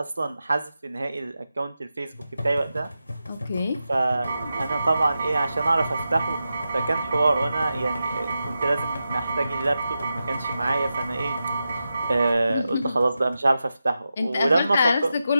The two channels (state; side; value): inverted; both; correlation -0.90